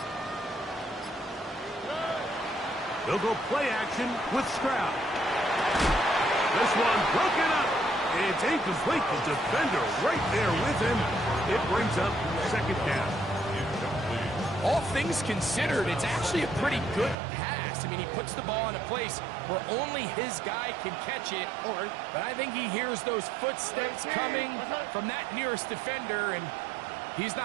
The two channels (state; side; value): drops out; left; at 17.2 s